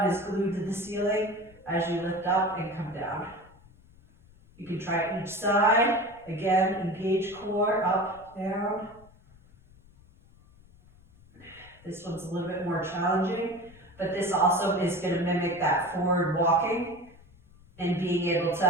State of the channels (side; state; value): left; noise; rumble, 26 dB below the sound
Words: is glued to the ceiling as you lift up and come down. You can try each side. Again, engage core, up, down. This one's a little bit more challenging, but this also is going to mimic that forward walking and being able